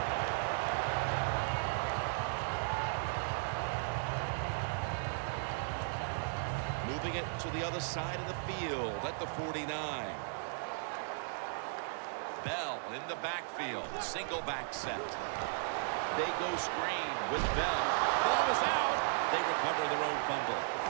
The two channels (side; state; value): left; silent; digital silence